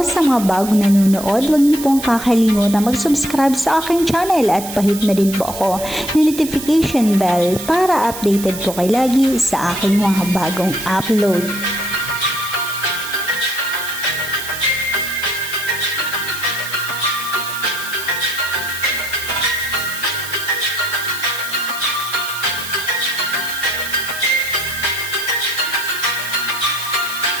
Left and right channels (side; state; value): right; noise; hiss, 10 dB below the sound